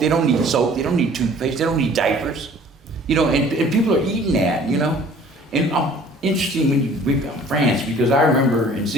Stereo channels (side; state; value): both; normal; correlation 0.51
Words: they don't need soap, they don't need toothpaste, they don't need diapers. And people are eating that, And interesting when you bring up France, because I remember in